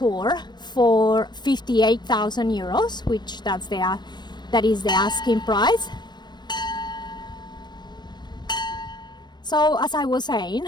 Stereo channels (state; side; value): late; right; 0.21 ms